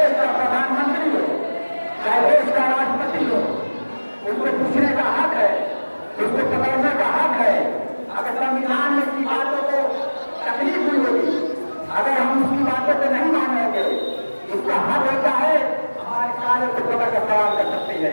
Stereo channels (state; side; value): inverted; both; correlation -1.00